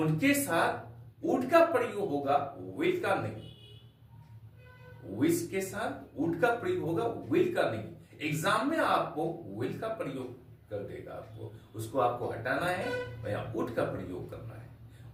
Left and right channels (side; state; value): both; identical; correlation 1.00